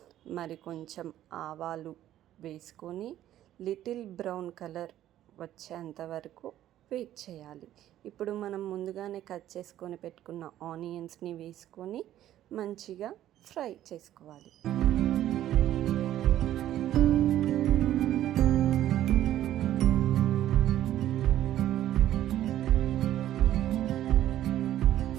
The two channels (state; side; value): quieter; left; 12.6 dB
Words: మరి కొంచెం ఆవాలు వేసుకొని లిటిల్ బ్రౌన్ కలర్ వచ్చేంత వరకు వెయిట్ చేయాలి. ఇప్పుడు మనం ముందుగానే కట్ చేసుకొని పెట్టుకున్న ఆనియన్స్ని వేసుకొని మంచిగా ఫ్రై చేసుకోవాలి.